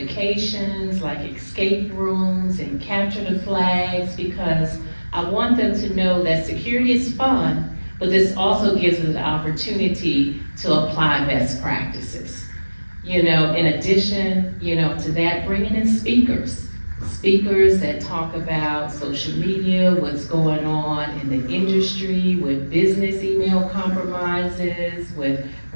like escape rooms and capture the flags, because I want them to know that security is fun, but this also gives us the opportunity to apply best practices. In addition, to that, bringing in speakers that talk about social media, what's going on in the industry with business email compromises, with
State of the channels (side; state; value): both; inverted; correlation -1.00